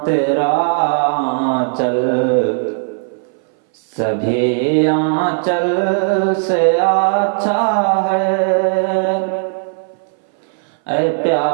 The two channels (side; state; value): left; silent; 62 dB below the other